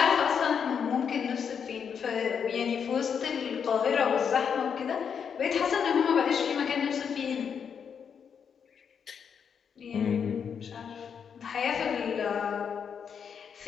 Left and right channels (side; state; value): right; quieter; 7.1 dB